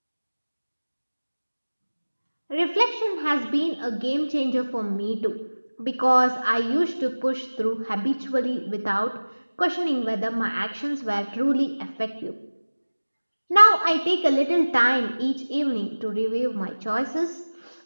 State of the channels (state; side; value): inverted; both; correlation -1.00